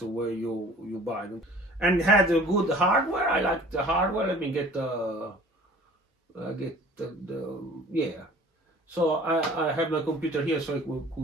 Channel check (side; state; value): both; normal; correlation 0.48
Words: where you buy them. And had a good hardware. I like the hardware. Let me get yeah. So I have my computer here, so I could